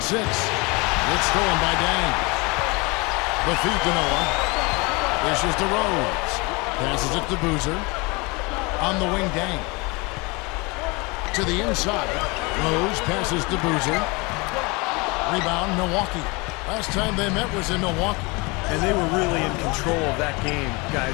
6. It's stolen by Dang. The feed to Noah. Dishes to Rose. Passes it to Boozer. On the wing, Dang. To the inside. Rose passes to Boozer. Rebound, Milwaukee. Last time they met was in Milwaukee. And they were really in control of that game,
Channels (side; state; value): right; quieter; 27.0 dB